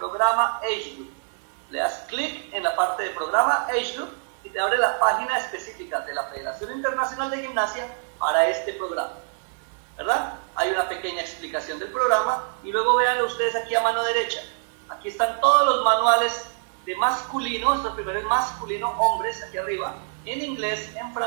Age Group. Le das clic en la parte de programa Age Group y te abre la página específica de la Federación Internacional de Gimnasia para este programa, ¿verdad? Hay una pequeña explicación del programa y luego vean ustedes aquí a mano derecha. Aquí están todos los manuales de masculino, esto primero es masculino, hombres, aquí arriba, en inglés, en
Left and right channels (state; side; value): silent; left; digital silence